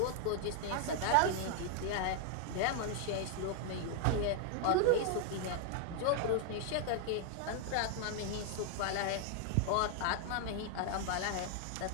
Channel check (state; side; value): different; both; correlation 0.00